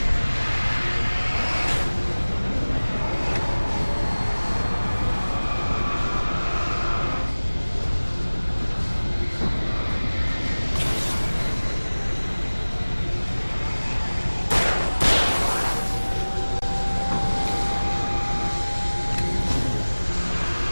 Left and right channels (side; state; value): both; inverted; correlation -1.00